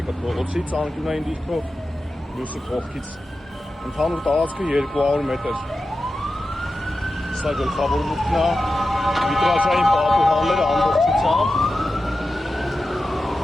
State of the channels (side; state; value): both; normal; correlation 0.92